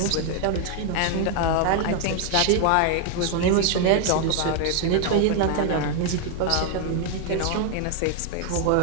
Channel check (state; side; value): different; both; correlation 0.00